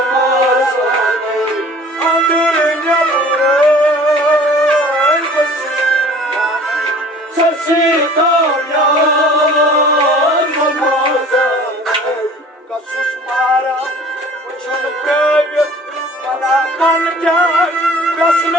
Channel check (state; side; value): normal; both; correlation 0.48